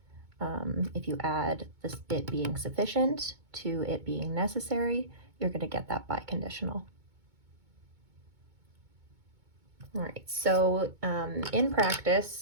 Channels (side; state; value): left; late; 2.2 ms